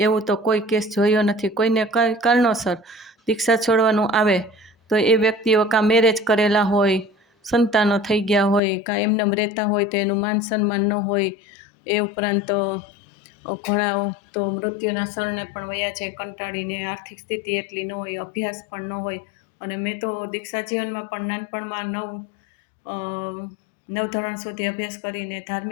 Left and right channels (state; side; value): drops out; right; at 8.6 s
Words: એવું તો કોઈ કેસ જોયો નથી. કોઈને કઈ કારણોસર દીક્ષા છોડવાનું આવે તો એ વ્યક્તિઓ કાં મેરેજ કરેલા હોય, સંતાનો થઈ ગયા હોય, કાં એમનેમ રહેતા હોય તો એનું માન સન્માન ન હોય. એ ઉપરાંત ઘણા તો મૃત્યુના શરણે પણ વયા છે કંટાળીને, આર્થિક સ્થિતિ એટલી ન હોય, અભ્યાસ પણ ન હોય. અને મેં તો દીક્ષા જીવનમાં પણ નાનપણમાં 9 ધોરણ સુધી અભ્યાસ કરીને,